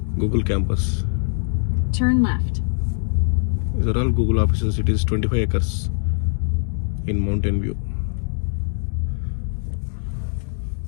campus. Turn left. These are all Google offices. It is 25 acres in Mountain View.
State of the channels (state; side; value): silent; right; 62 dB below the other